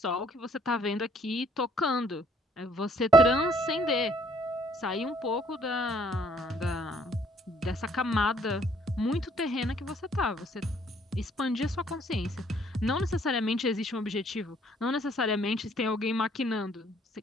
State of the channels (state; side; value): normal; both; correlation 0.63